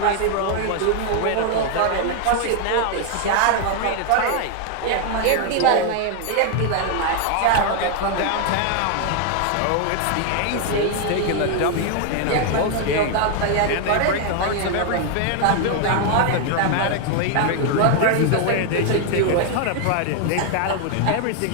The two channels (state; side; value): different; both; correlation 0.00